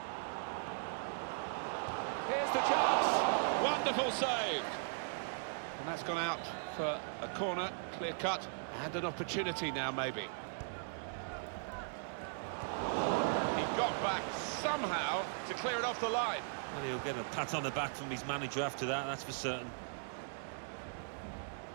Here's the chance. Wonderful save. And that's gone out for a corner, clear cut, and an opportunity now maybe. He got back somehow to clear it off the line. Well, he'll get a pat on the back from his manager after that, that's for certain.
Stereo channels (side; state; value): left; silent; digital silence